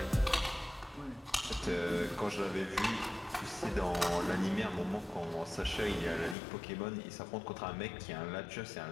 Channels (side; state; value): right; drops out; at 6.4 s